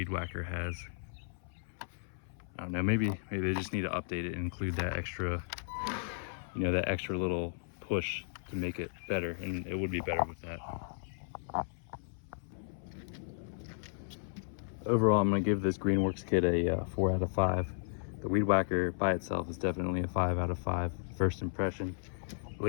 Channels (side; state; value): right; silent; 55 dB below the other